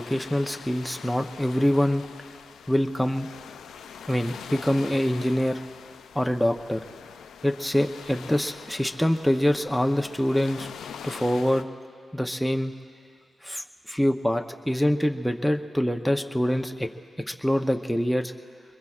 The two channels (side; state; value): both; normal; correlation 0.98